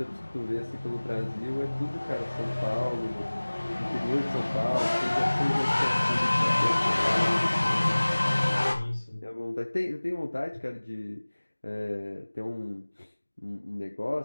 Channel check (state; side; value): inverted; both; correlation -1.00